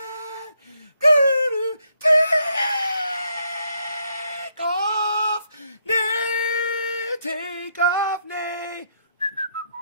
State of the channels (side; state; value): both; inverted; correlation -0.75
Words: Take off Nay. Take off Nay.